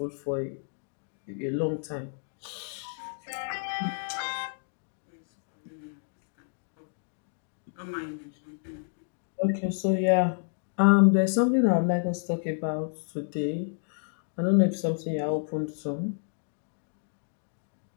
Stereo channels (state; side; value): silent; right; digital silence